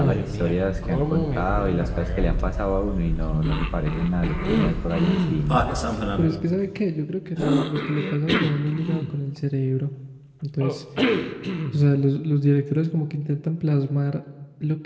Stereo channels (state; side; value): identical; both; correlation 1.00